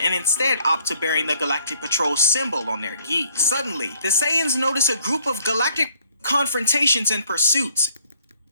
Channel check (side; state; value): both; inverted; correlation -0.63